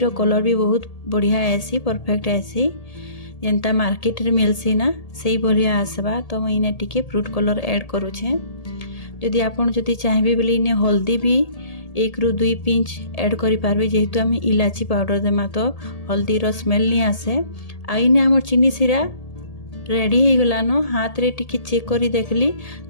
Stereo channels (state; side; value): late; right; 1.8 ms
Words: कलर भी बहुत बढ़िया आसी, परफेक्ट आसी। जेंता मार्केट रे मिलसी ना सही बढ़िया आसबा। तो मुई इने टिके फ्रूट कलर ऐड करूछे। जदि आपन जदि चाहबे बोले इने हल्दी भी 1 रु 2 पिंच ऐड करि पारबे। जेहेतु हम इलाची पाउडर देमा तो हल्दी रो स्मेल नहीं आसे। आ इने हमर चीनी सिरा रेडी हो गलानो। हाथ रे टिके चेक करी देखली